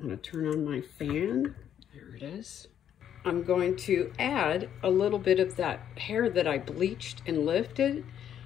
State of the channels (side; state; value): right; quieter; 9.7 dB